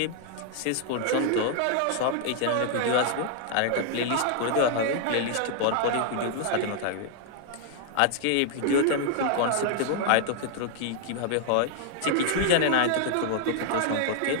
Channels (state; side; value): different; both; correlation 0.00